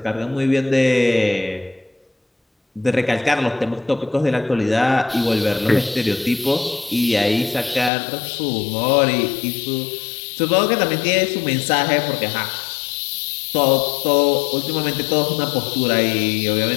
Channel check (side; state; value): right; drops out; at 7.9 s